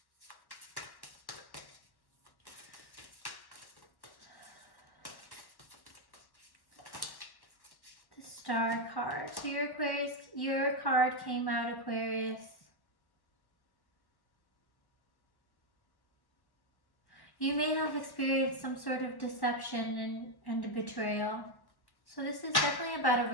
Star card. So your card came out, Aquarius. You may have experienced some sort of deception and a betrayal. So this is definitely about a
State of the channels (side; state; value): right; late; 1.1 ms